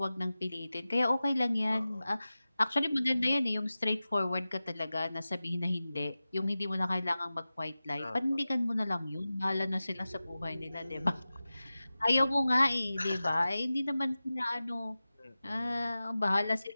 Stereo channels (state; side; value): inverted; both; correlation -0.96